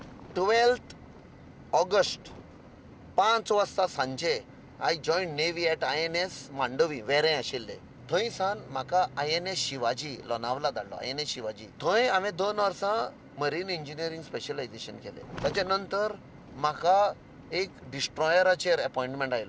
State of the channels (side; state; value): both; identical; correlation 1.00